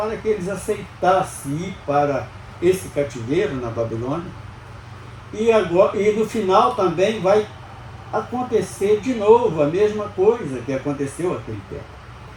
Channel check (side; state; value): both; identical; correlation 1.00